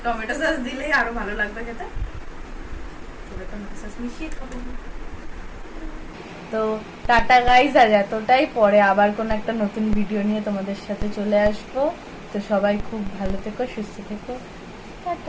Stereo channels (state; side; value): identical; both; correlation 1.00